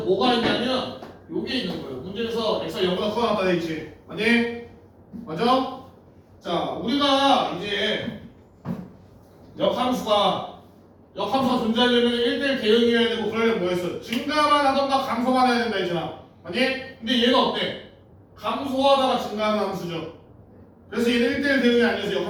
있냐면 요게 있는 거예요. 문제에서 x가 0보다 커 나타나 있지. 아니? 맞아? 자, 우리가 이제 역함수가 존재하려면 1대1 대응이어야 되고 그러려면 뭐 했어? 증가만 하던가 감소만 해야 된다 했잖아. 아니? 근데 얘는 어때? 감소하다가 증가하는 함수죠. 그래서 얘는 1대1 대응이 아니어서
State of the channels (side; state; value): both; identical; correlation 1.00